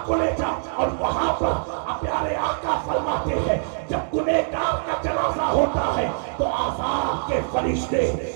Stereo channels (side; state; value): left; silent; digital silence